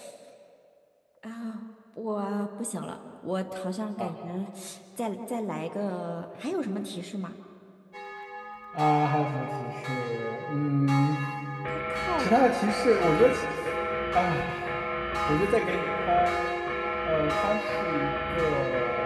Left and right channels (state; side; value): identical; both; correlation 1.00